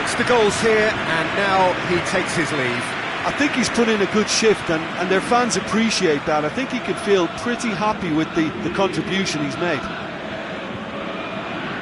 the goals here, and now he takes his leave. I think he's put in a good shift, and their fans appreciate that. I think he can feel pretty happy with the contribution he's made.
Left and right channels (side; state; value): both; identical; correlation 1.00